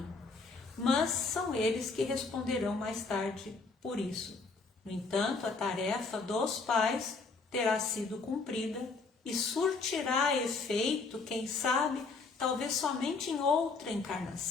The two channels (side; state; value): right; quieter; 4.2 dB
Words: Mas são eles que responderão mais tarde por isso. No entanto, a tarefa dos pais terá sido cumprida e surtirá efeito, quem sabe, talvez somente em outra